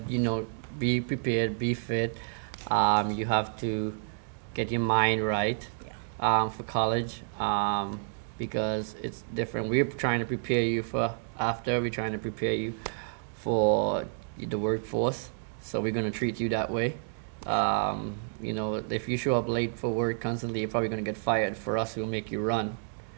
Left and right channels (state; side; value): silent; left; digital silence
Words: be prepared, be fit. You have to get your mind right for college because it's different. We're trying to prepare you for after. We're trying to prepare you for the workforce. So we're going to treat you that way. If you show up late for work constantly, you're probably going to get fired. For us, we'll make you run.